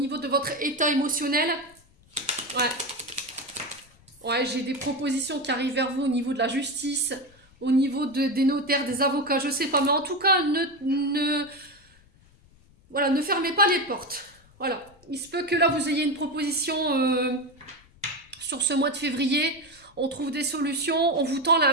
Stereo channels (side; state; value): left; noise; rumble, 29 dB below the sound